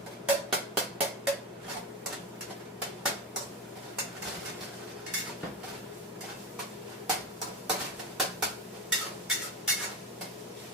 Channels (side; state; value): both; normal; correlation 0.20